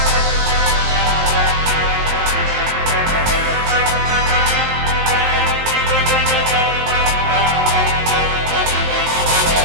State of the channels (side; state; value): left; late; 19 ms